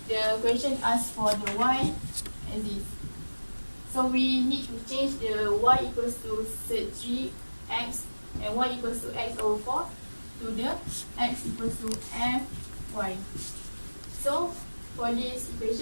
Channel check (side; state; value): both; inverted; correlation -1.00